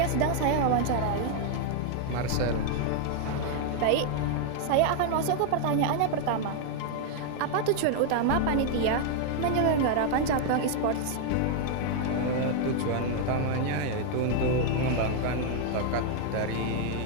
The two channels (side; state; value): both; different; correlation 0.00